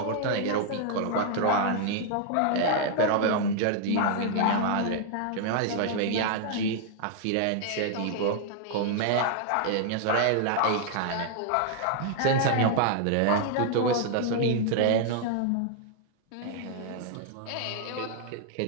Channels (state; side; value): different; both; correlation 0.00